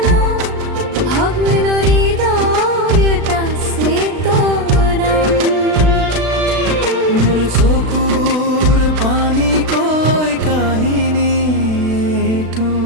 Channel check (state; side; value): late; left; 36 ms